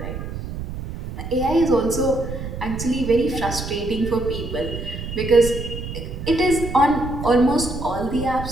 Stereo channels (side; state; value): right; noise; rumble, 7 dB below the sound